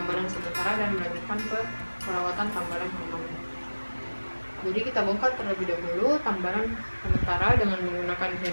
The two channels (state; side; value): inverted; both; correlation -1.00